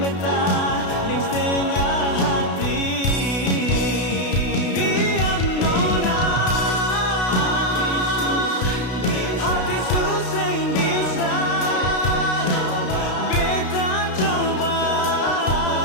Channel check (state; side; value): late; right; 32 ms